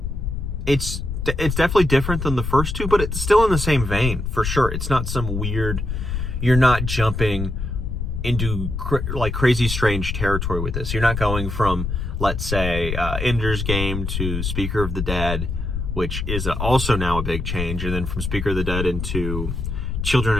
definitely different than the first two, but it's still in the same vein, for sure. It's not some weird, you're not jumping into like crazy strange territory with this. You're not going from, let's say, Ender's Game to Speaker of the Dead, which is also now a big change, and then from Speaker of the Dead into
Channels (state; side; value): noise; left; rumble, 3 dB below the sound